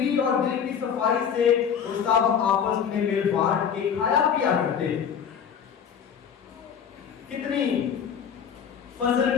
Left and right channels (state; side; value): quieter; right; 7.7 dB